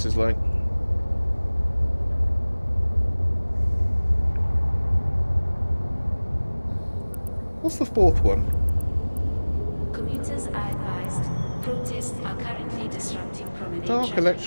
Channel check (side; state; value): both; inverted; correlation -1.00